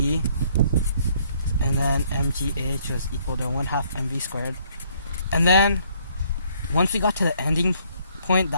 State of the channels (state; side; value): inverted; both; correlation -0.65